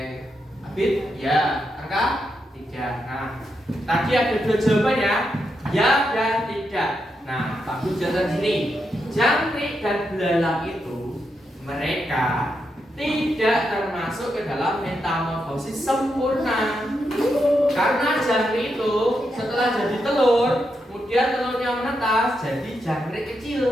Abid? Ya. Arka? Tidak. Nah, tadi ada dua jawaban ya. Ya dan tidak. Nah, Pak Guru jelasan sini. Jangkrik dan belalang itu mereka tidak termasuk ke dalam metamorfosis sempurna. Karena jangkrik itu setelah jadi telur, kemudian telurnya menetas jadi jangkrik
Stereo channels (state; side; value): normal; both; correlation 0.83